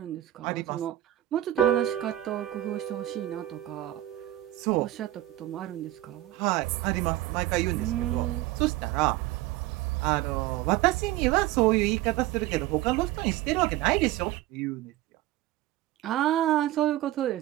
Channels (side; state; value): left; quieter; 15.2 dB